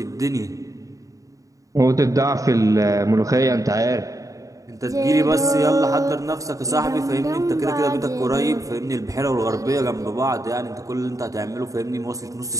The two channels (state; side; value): late; left; 0.16 ms